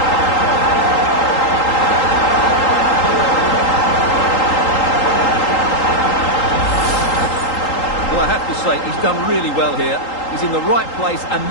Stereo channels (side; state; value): right; late; 3.8 ms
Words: Well, I have to say, he's done really well here. He's in the right place and